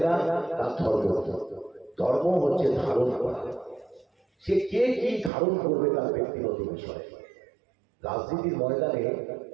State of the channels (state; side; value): drops out; left; at 5.3 s